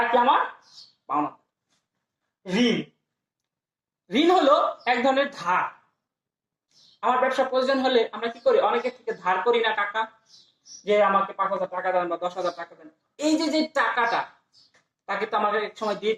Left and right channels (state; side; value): identical; both; correlation 1.00